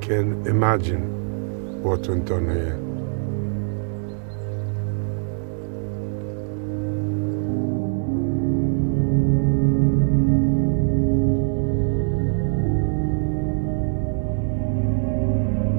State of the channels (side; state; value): left; silent; digital silence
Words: imagine what went on here.